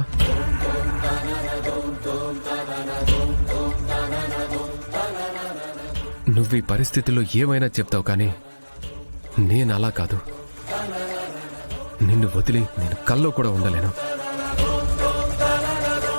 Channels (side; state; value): both; inverted; correlation -1.00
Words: నువ్వు ఈ పరిస్థితుల్లో ఏమైనా చెప్తావు, కానీ నేను అలా కాదు. నిన్ను వదిలి నేను కల్లో కూడా ఉండలేను.